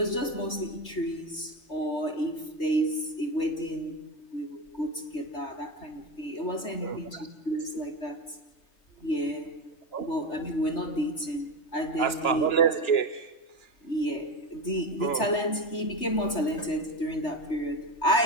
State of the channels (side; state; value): right; late; 3.3 ms